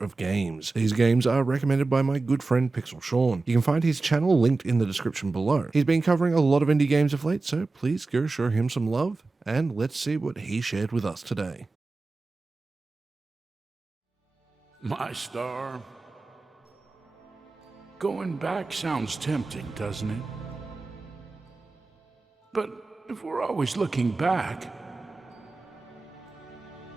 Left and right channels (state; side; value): quieter; left; 3.6 dB